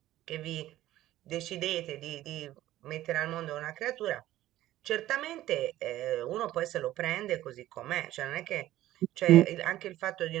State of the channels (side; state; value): left; quieter; 14.6 dB